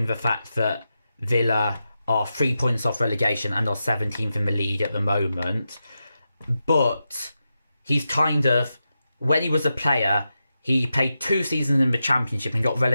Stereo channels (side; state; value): both; inverted; correlation -0.89